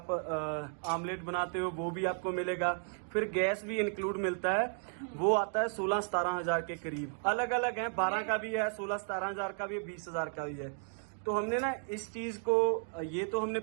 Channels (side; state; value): left; silent; 55 dB below the other